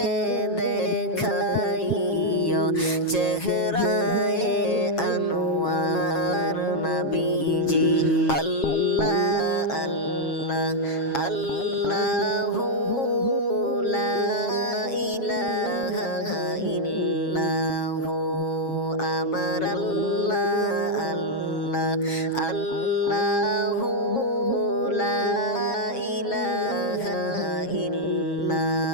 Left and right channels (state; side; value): late; right; 7.4 ms